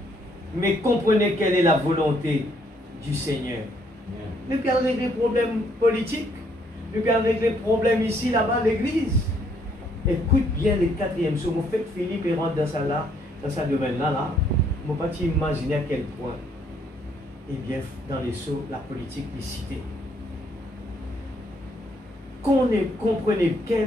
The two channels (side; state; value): both; normal; correlation 0.68